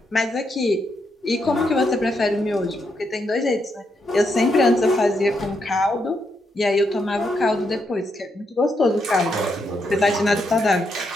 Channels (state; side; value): normal; both; correlation 0.80